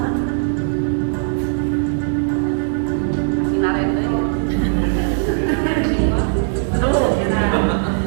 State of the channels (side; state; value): left; silent; 67 dB below the other